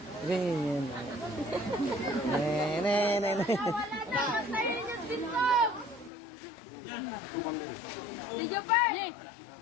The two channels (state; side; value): drops out; right; at 6.1 s